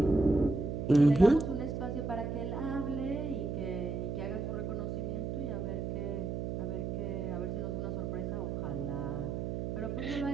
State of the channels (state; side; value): noise; right; hum, 3 dB below the sound